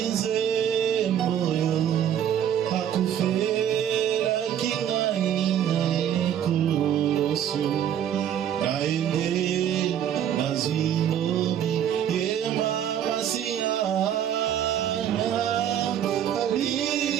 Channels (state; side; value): quieter; left; 9.8 dB